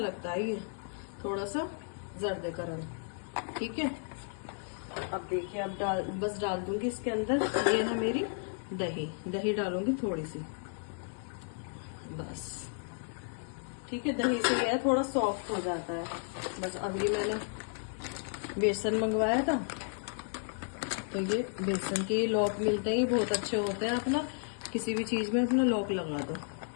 है ये थोड़ा सा जर्दे का रंग, ठीक है। अब देखिए अब बस डाल दूंगी इसके अंदर, ये है मेरी दही, दही डालूंगी थोड़ी सी बस, ठीक है। दही से ये थोड़ा सॉफ्ट हो जाता है बस। अभी मैंने बेसन मंगवाया था, तो ये बेसन के लॉक मिलते हैं, बहुत अच्छे होते हैं, अपना किसी भी चीज में अपना लॉक लगा दो,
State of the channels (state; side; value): silent; right; 56 dB below the other